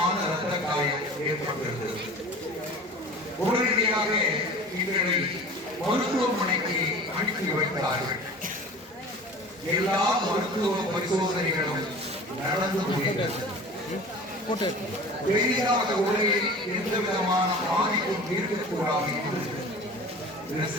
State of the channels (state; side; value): normal; both; correlation 0.39